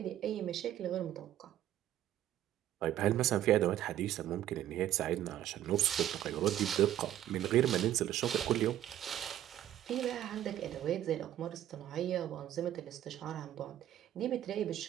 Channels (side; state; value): left; quieter; 12.3 dB